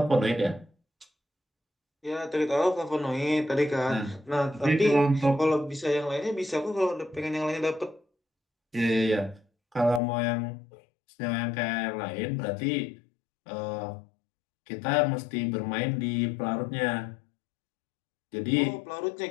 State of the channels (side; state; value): right; drops out; at 10.0 s